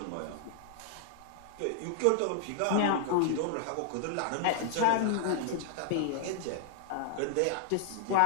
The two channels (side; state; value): both; different; correlation -0.01